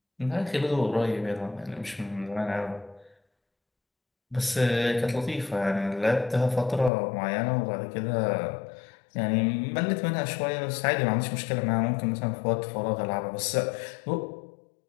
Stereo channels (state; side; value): drops out; right; at 6.9 s